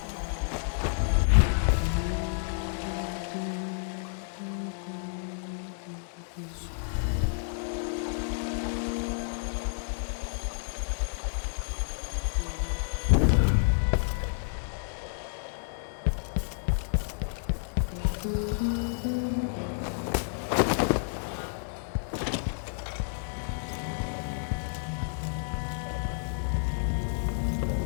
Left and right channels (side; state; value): right; silent; 57 dB below the other